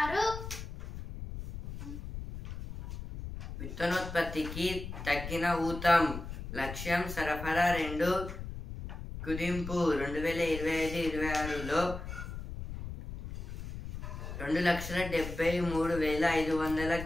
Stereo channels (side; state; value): left; noise; rumble, 8 dB below the sound